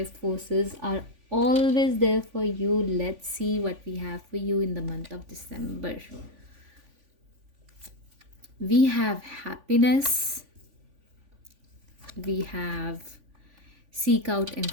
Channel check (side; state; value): left; late; 3.5 ms